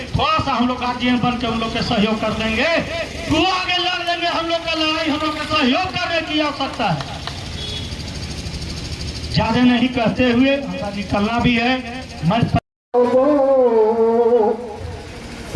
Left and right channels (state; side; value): identical; both; correlation 1.00